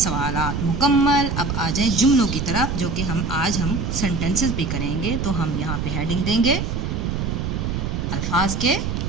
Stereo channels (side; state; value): right; noise; rumble, 2 dB below the sound